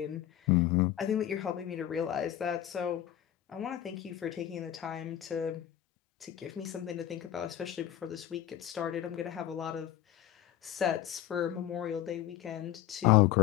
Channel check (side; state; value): right; quieter; 11.9 dB